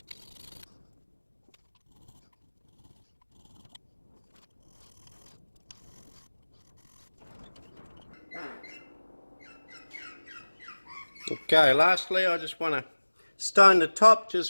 Okay, lastly I just want to stone the top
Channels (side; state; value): both; inverted; correlation -1.00